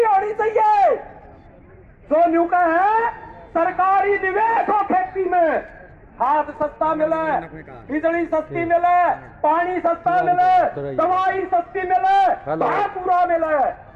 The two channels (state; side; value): identical; both; correlation 1.00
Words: होनी चाहिए, जो न्यू का है सरकारी निवेश हो खेती में, खाद सस्ता मिले, बिजली सस्ती मिले, पानी सस्ता मिले, दवाई सस्ती मिले, भाव पूरा मिले।